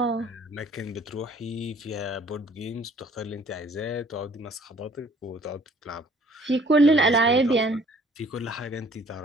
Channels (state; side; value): normal; both; correlation 0.57